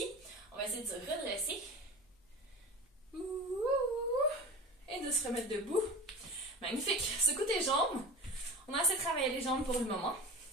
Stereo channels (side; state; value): both; normal; correlation 0.33